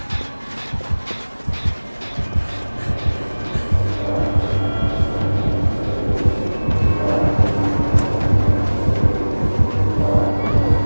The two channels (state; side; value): inverted; both; correlation -1.00